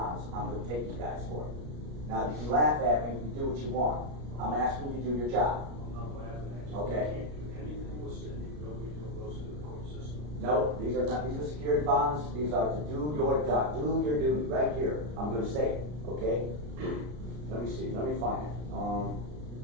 I'm going to take you guys for. Now, you can laugh at me, you can do what you want. I'm asking you to do your job. I'm not laughing at you. Okay. You can't do anything with Cindy Bilbrey until it goes through the court system. No, these are not, these are security bonds. These are to do your job, do your duty right here. I'm going to say it, okay? Let me see, let me find it.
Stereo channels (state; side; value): late; left; 33 ms